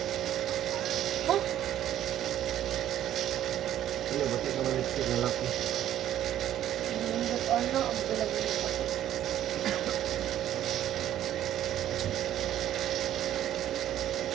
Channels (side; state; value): left; quieter; 11.7 dB